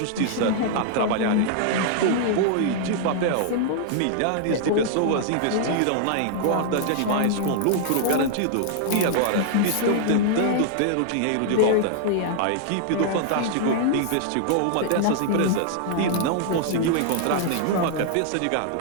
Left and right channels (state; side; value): different; both; correlation -0.01